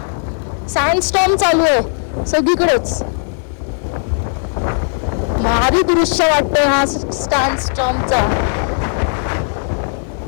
सँडस्टॉर्म चालू आहे सगळीकडेच. भारी दृश्य वाटतंय हा सँडस्टॉर्मचा.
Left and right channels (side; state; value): right; silent; digital silence